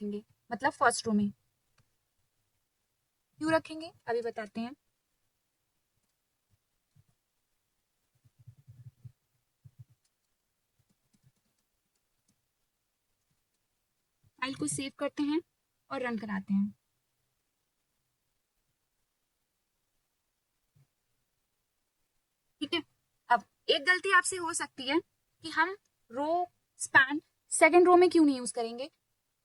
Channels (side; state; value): both; identical; correlation 1.00